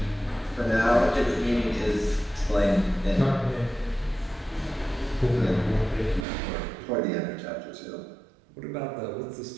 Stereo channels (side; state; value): left; drops out; at 6.2 s